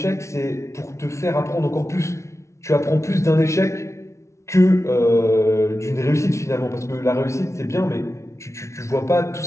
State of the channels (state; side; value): late; right; 0.14 ms